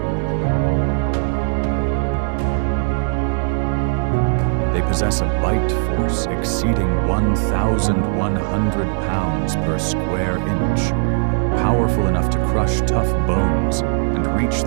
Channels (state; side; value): silent; left; digital silence